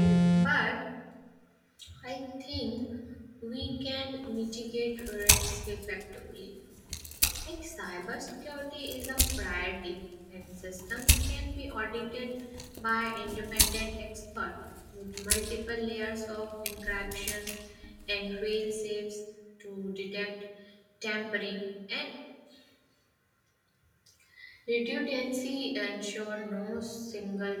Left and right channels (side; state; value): both; identical; correlation 1.00